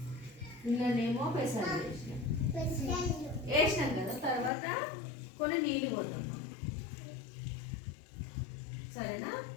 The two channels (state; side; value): drops out; right; at 4.5 s